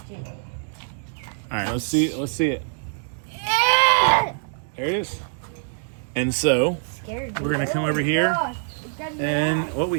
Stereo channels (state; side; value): silent; left; digital silence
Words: it. All right, let's see it. There it is. And so Scared. we're gonna come over here, and what